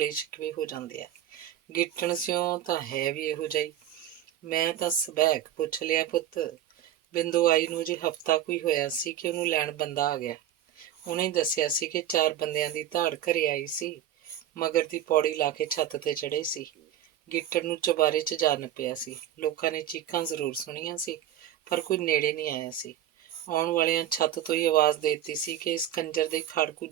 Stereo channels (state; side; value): quieter; left; 11.0 dB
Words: ਸ਼ਿਕਵੇ ਹੋ ਜਾਂਦੇ ਆ। ਗਿੱਟਣ ਸਿਓ ਤਾਂ ਹੈ ਵੀ ਇਹੋ ਜਿਹੀ। ਮੈਂ ਤਾਂ ਸਬੈਕ ਪੁੱਛ ਲਿਆ ਪੁੱਤ। ਬਿੰਦੂ ਆਈ ਨੂੰ ਅਜੇ ਹਫ਼ਤਾ ਕੋਈ ਹੋਇਆ ਸੀ ਕਿ ਉਹਨੂੰ ਲੈਣ ਬੰਦਾ ਆ ਗਿਆ। ਉਹਨੇ ਦੱਸਿਆ ਸੀ ਕਿ 4 ਬੰਦਿਆਂ ਦੀ ਧਾੜ ਘਰੇ ਆਈ ਸੀ, ਮਗਰ ਦੀ ਪੌੜੀ ਲਾ ਕੇ ਛੱਤ ਤੇ ਚੜ੍ਹੇ ਸੀ। ਗਿੱਟਣ ਨੂੰ ਚੁਬਾਰੇ 'ਚ ਜਾ ਨੱਪਿਆ ਸੀ। ਲੋਕਾਂ ਨੇ ਚੀਕਾਂ ਜ਼ਰੂਰ ਸੁਣੀਆਂ ਸੀ, ਪਰ ਕੋਈ ਨੇੜੇ ਨਹੀਂ ਆਇਆ ਸੀ। ਆਉਣ ਵਾਲਿਆਂ ਛੱਤ ਤੋਂ ਹੀ ਆਵਾਜ਼ ਦੇ ਦਿੱਤੀ ਸੀ ਕਿ ਇਸ ਕੰਜਰ ਦੇ ਖਾੜਕੂ